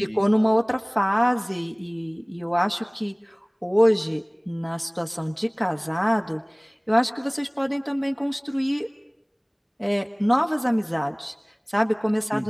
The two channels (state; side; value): identical; both; correlation 1.00